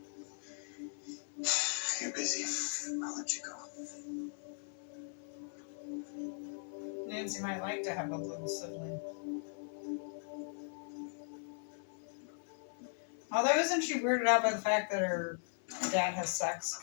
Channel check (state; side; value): silent; right; 52 dB below the other